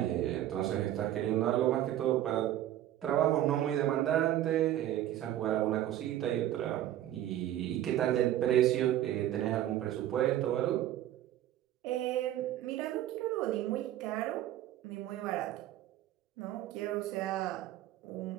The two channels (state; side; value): quieter; left; 12.7 dB